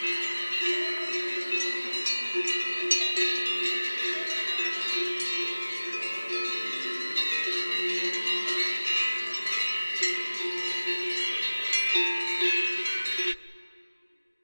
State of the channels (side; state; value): both; inverted; correlation -1.00